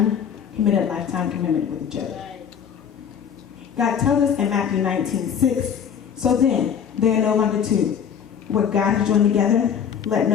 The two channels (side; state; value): right; quieter; 7.9 dB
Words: lifetime commitment with each other. God tells us in Matthew 19:6, so then, they are no longer two. What God has joined together, let